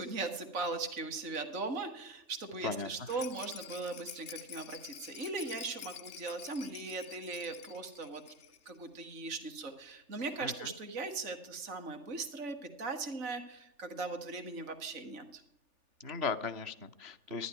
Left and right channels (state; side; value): late; left; 3.4 ms